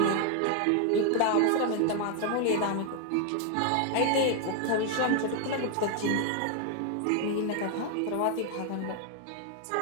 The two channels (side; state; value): both; different; correlation 0.01